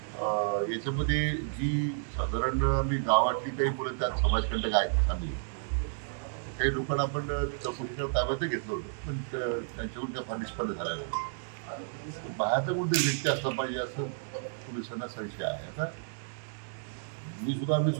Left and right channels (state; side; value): silent; left; digital silence